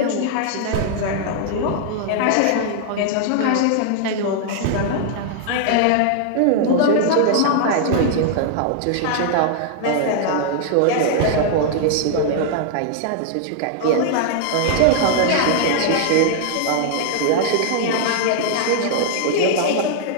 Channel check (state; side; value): different; both; correlation -0.01